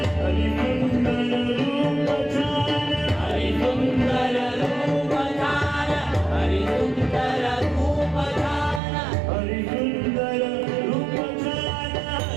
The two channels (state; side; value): drops out; left; at 8.8 s